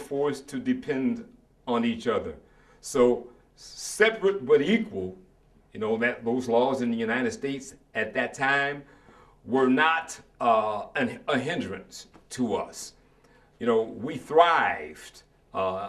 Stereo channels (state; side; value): identical; both; correlation 1.00